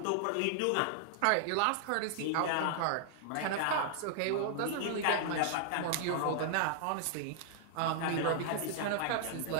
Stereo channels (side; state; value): both; different; correlation -0.01